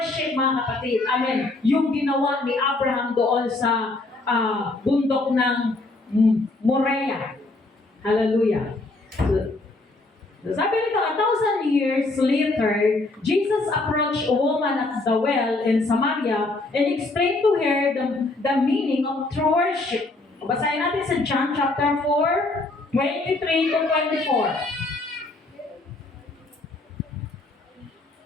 mga kapatid. Amen. Yung ginawa ni Abraham doon sa bundok ng Moriah. Hallelujah. So, sabi nito, 1,000 years later, Jesus approached a woman at the well in Samaria and explained to her the meaning of true worship. Basahin natin sa John chapter 4, 23 to 24.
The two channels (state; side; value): quieter; right; 3.1 dB